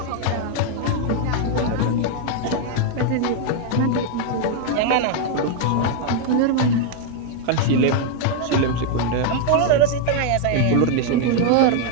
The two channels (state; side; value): different; both; correlation 0.00